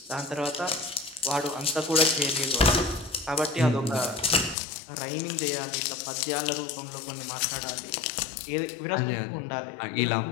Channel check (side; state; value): right; drops out; at 4.5 s